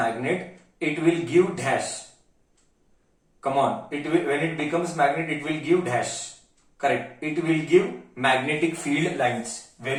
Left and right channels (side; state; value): both; identical; correlation 1.00